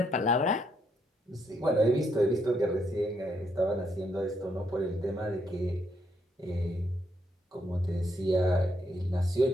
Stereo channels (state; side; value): normal; both; correlation 0.75